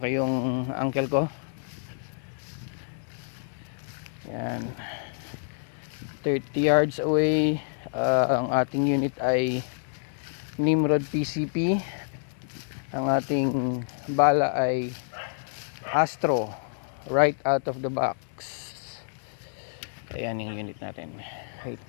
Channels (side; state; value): right; silent; digital silence